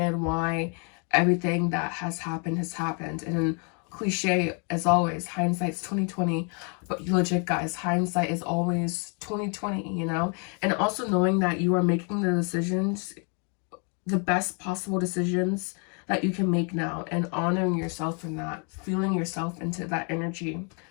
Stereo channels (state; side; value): quieter; right; 37.2 dB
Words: why everything that has happened. And cliche as always, hindsight's 2020, but legit, guys, hindsight is always 2020, you know. And also knowing that you are making the decisions, the best possible decisions that you can make now, and honoring yourself in that, feeling yourself into that energy,